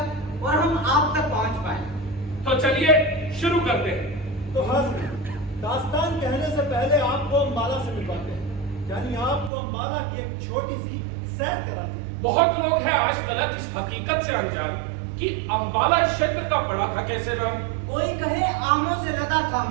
और हम आप तक पहुंच पाए। तो चलिए शुरू करते हैं। तो हाँ, दास्तान कहने से पहले आपको अम्बाला से मिलवाते हैं, यानी आपको अम्बाला की एक छोटी सी सैर कराते हैं। बहुत लोग हैं आज तक इस हकीकत से अनजान कि अम्बाला क्षेत्र का पड़ा था कैसे नाम। कोई कहे आमों से लदा था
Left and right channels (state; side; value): drops out; left; at 9.5 s